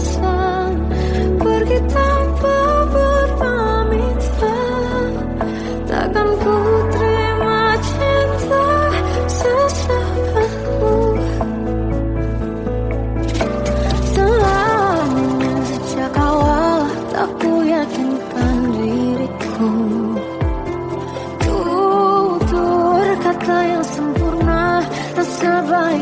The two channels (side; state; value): both; identical; correlation 1.00